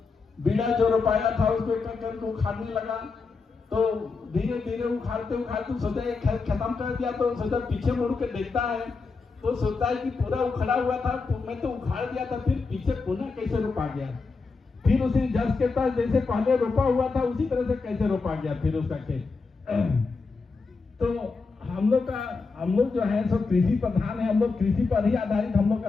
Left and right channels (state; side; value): quieter; right; 4.4 dB